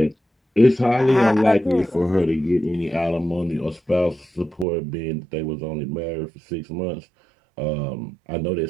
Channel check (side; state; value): left; drops out; at 4.7 s